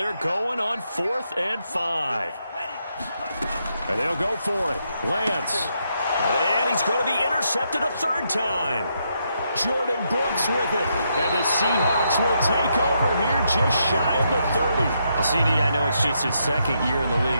going on 4th and 5. And they'll go for it. Lance. And he's going to be intercepted a 3rd time. Jordan Brooks with it. And the Seahawks will take over here just shy of the 30. Well, CD, I know it's just his 2nd year in the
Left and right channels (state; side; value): inverted; both; correlation -0.79